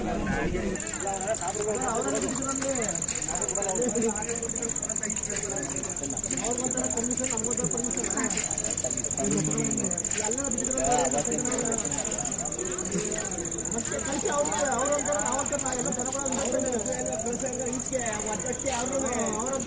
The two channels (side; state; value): both; identical; correlation 1.00